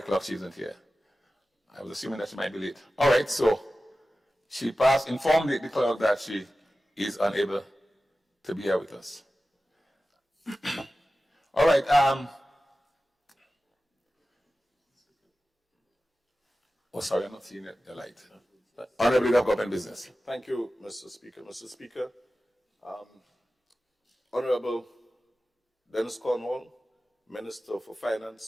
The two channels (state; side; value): normal; both; correlation 0.95